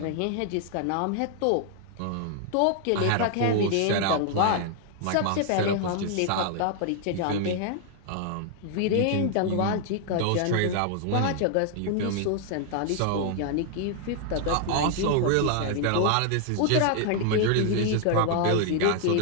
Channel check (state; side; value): different; both; correlation 0.00